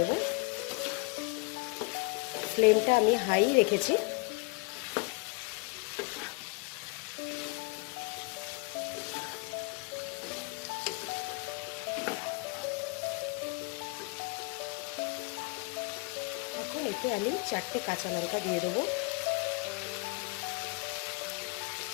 ফ্লেমটা আমি হাই রেখেছি। এখন এতে আমি 4টে কাঁচা লঙ্কা দিয়ে দেবো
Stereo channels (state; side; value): quieter; right; 29.2 dB